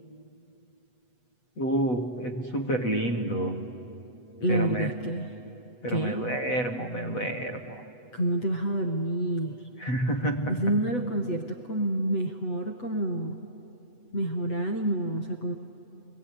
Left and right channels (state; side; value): late; right; 8.1 ms